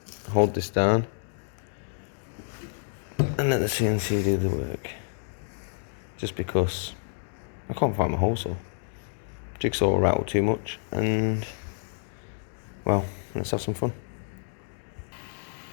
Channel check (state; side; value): silent; right; digital silence